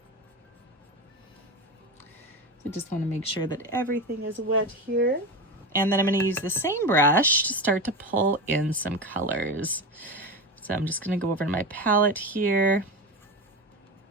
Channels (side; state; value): both; normal; correlation 0.22